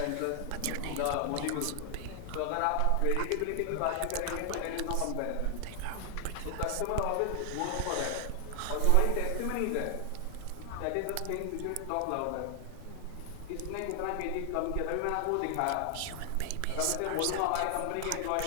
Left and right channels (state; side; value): different; both; correlation 0.00